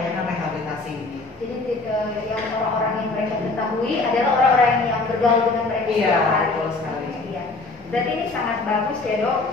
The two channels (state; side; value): quieter; right; 3.5 dB